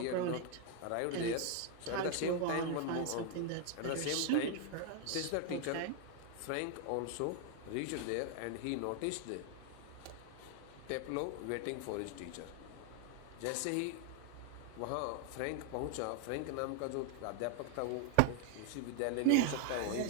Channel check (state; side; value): different; both; correlation 0.00